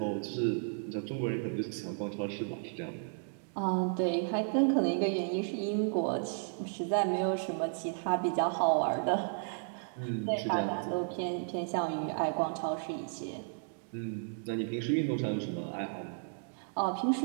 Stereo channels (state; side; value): silent; left; digital silence